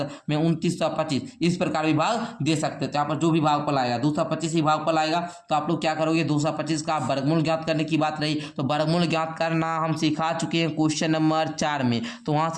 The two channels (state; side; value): identical; both; correlation 1.00